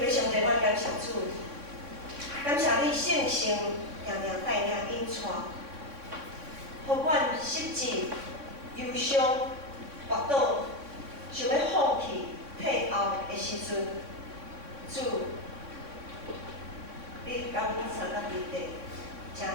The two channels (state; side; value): late; left; 3.6 ms